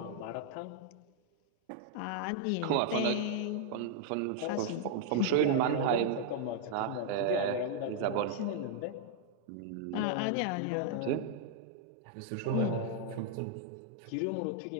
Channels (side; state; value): both; different; correlation -0.01